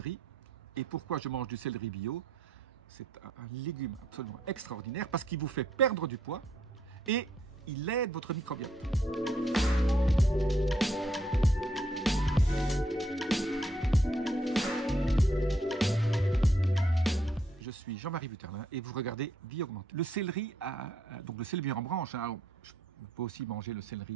et pourquoi je mange du céleri bio. C'est un légume absolument extraordinaire parce qu'il vous fait perdre du poids et il aide votre microbiote. Je suis Jean-Marie Vuterlin et vous regardez Vie Augmentée. Le céleri, donc le céleri en branche, hein, on peut aussi manger le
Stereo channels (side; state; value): both; normal; correlation 0.73